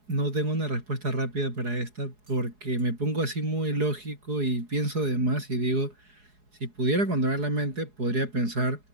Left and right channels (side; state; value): left; late; 4.8 ms